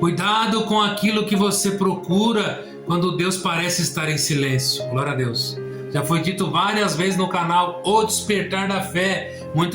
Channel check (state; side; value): identical; both; correlation 1.00